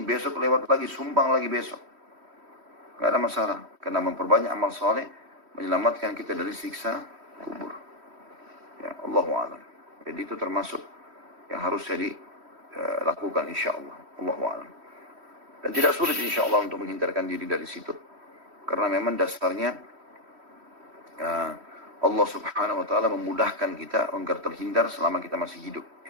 besok lewat lagi, sumbang lagi besok. Gak ada masalah. Karena memperbanyak amal soleh, menyelamatkan kita dari siksa kubur. Ya, Allahu a'lam. Jadi itu termasuk yang harus jadi lakukan insyaAllah. Allahu a'lam. Dan tidak sulit insyaAllah untuk menghindarkan diri dari situ. Karena memang dasarnya Allah Subhanahu wa ta'ala memudahkan kita agar terhindar selama kita masih hidup.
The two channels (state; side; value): late; left; 3.1 ms